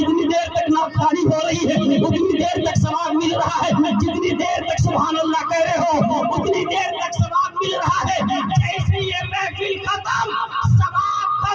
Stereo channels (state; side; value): identical; both; correlation 1.00